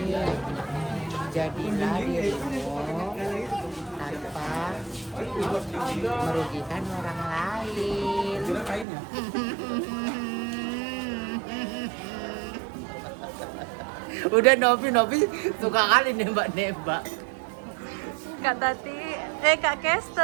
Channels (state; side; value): drops out; left; at 8.8 s